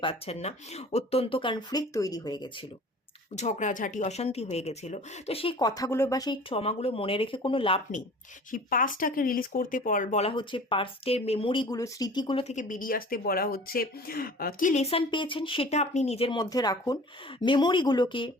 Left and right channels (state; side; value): normal; both; correlation 0.44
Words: পারছেন না, অত্যন্ত কনফ্লিক্ট তৈরি হয়ে গেছিলো, ঝগড়াঝাটি অশান্তি হয়ে গেছিল। তো সেই কথাগুলো বা সেই ট্রমাগুলো মনে রেখে কোনো লাভ নেই, সেই পাস্টটাকে রিলিজ করতে বলা হচ্ছে, পাস্টের মেমোরিগুলো স্মৃতিগুলো থেকে বেরিয়ে আসতে বলা হচ্ছে। কি লেসন পেয়েছেন সেটা আপনি নিজের মধ্যে রাখুন, মেমোরিগুলোকে